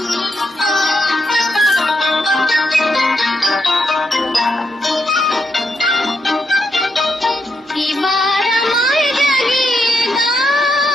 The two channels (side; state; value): both; normal; correlation 0.80